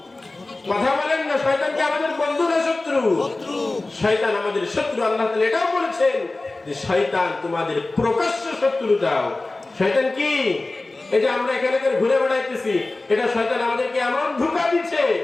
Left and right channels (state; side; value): quieter; right; 3.1 dB